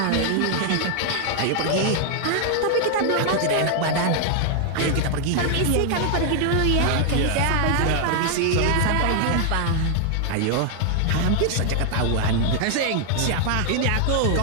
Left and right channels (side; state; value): both; different; correlation 0.00